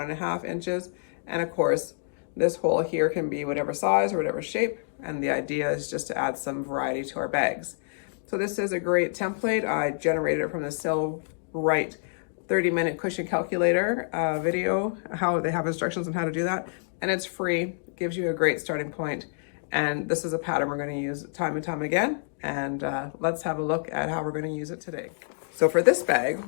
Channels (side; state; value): right; silent; digital silence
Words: inches. And of course, this hole here can be whatever size or whatever shape. And the idea is just to add some variety to our bags. So this is a great template. I generated it from the Sew Right 30-minute cushion calculator video, how they have instructions on how to do that. And it's free, it gives you a great starting point. And this is a pattern we're going to use time and time again. And let's have a look at how we're going to use it today. So for this bag,